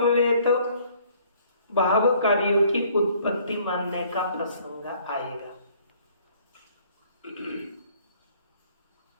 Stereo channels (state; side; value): inverted; both; correlation -0.60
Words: भाव कार्यों की उत्पत्ति मानने का प्रसंग आएगा।